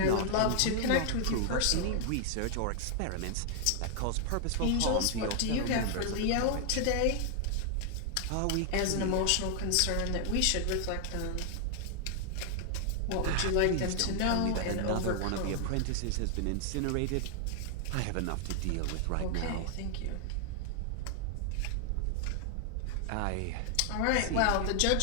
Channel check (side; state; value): both; different; correlation 0.00